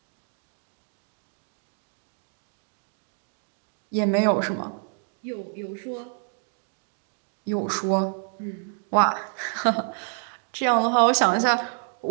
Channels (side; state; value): left; silent; 56 dB below the other